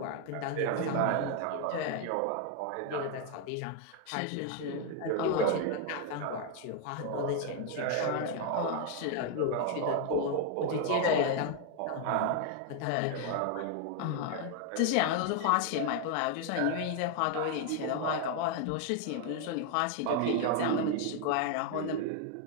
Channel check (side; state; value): both; different; correlation 0.00